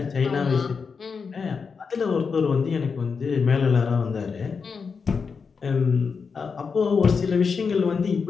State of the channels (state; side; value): quieter; right; 5.5 dB